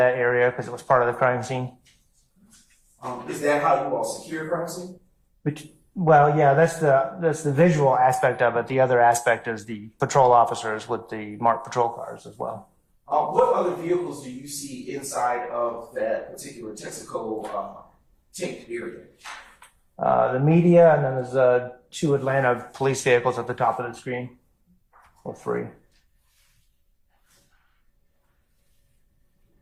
area because it was part of the crime scene. Is that how you all secure crime scene? Well, yeah, that's the visual aspect of it. The other aspect is the patrol officers with the marked patrol cars as well. What other vehicles do you see inside of that particular Texaco taped area? The media, and then there's 2 Atlanta police vehicles at the top of the screen, or 3.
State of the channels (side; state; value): both; identical; correlation 1.00